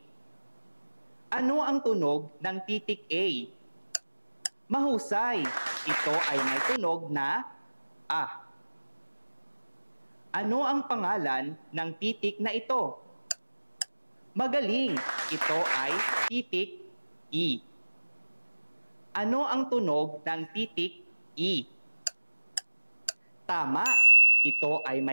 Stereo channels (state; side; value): inverted; both; correlation -1.00